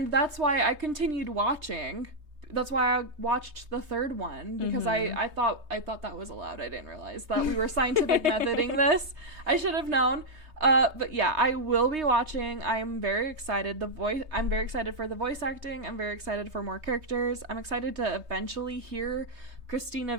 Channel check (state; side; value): late; left; 3.2 ms